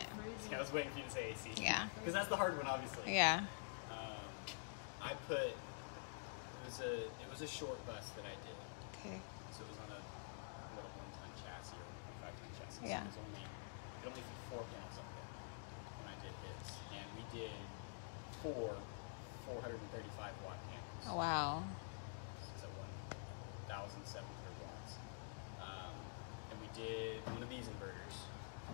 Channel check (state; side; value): silent; right; digital silence